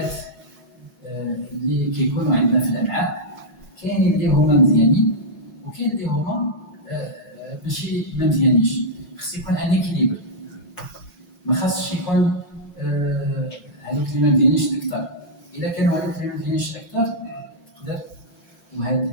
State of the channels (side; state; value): right; late; 4.9 ms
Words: اللي كيكونوا عندنا في الامعاء كاين اللي هما مزيانين وكاين اللي هما ماشي ما مزيانينش خص يكون ان اكيليبر ما خاصش يكون هذوك اللي ما مزيانينش اكثر الا كانوا هذوك اللي ما مزيانينش اكثر تقدر